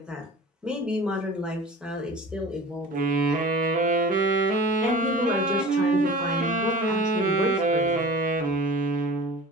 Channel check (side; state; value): both; normal; correlation 0.40